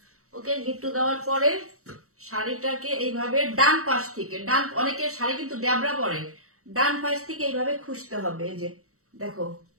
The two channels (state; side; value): late; left; 0.64 ms